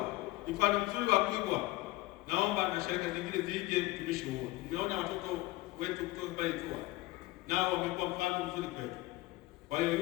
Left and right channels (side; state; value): right; quieter; 19.3 dB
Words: mfano mzuri wa kuigwa. Naomba na sharika zingine zije utumishi huo. Tumeona watoto wetu kutoka pale Itua nao wamekuwa mfano mzuri kwetu. Kwa hiyo